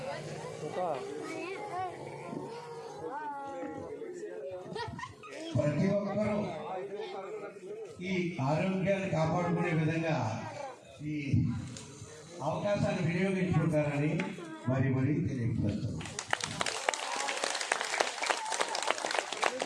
ప్రతి ఒక్కరూ ఈ ఆరోగ్యాన్ని కాపాడుకునే విధంగా ఈ అవకాశాన్ని వినియోగించుకుంటారని మరీ తెలియపరుస్తాను.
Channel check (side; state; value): both; identical; correlation 1.00